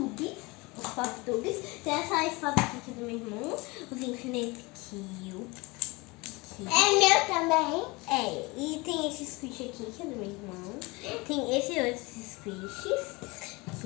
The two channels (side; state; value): right; quieter; 24.8 dB